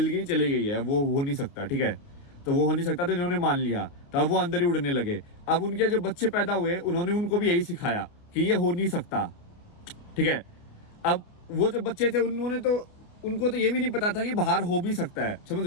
गई चली गई है, वो हो नहीं सकता, ठीक है, तो वो हो नहीं सकता, तो इन्होंने मान लिया, तो अब वो अंदर ही उड़ने लगे। अब उनके जो बच्चे पैदा हुए उन्होंने उनको भी यही सिखाया कि ये हो नहीं सकता, ठीक है। अब वो जो बच्चे थे उन्होंने तो, उनको तो ये भी नहीं पता था कि बाहर हो भी सकता है, समझ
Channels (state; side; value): late; right; 29 ms